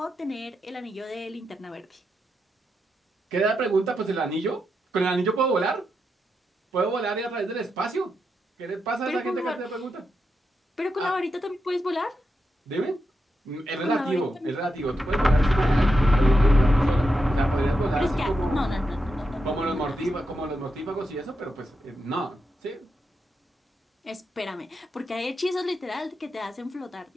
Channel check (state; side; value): normal; both; correlation 0.86